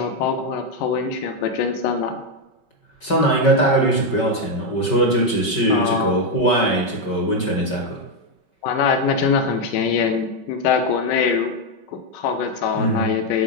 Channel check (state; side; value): late; right; 5.3 ms